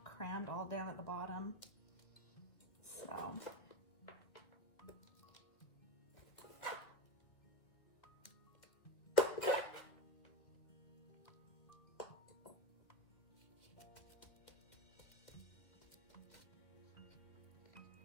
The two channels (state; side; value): late; right; 2.3 ms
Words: crammed all down at the bottom. So.